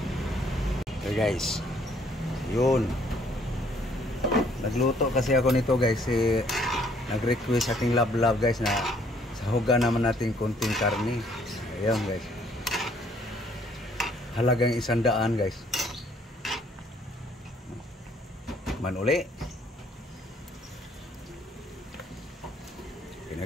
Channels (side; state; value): both; normal; correlation 0.64